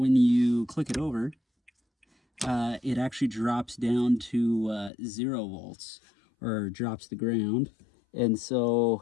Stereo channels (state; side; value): drops out; right; at 4.9 s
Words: you click it over, it actually drops down to 0 volts, or drops to ground. And